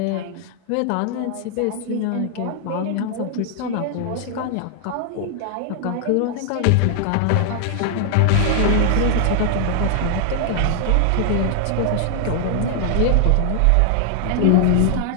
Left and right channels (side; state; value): both; different; correlation 0.00